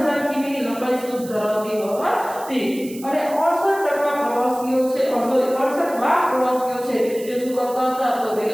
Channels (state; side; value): noise; right; hiss, 17 dB below the sound